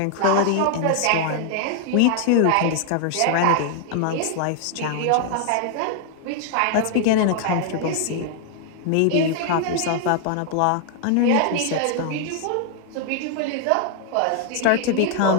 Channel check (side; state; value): both; different; correlation 0.00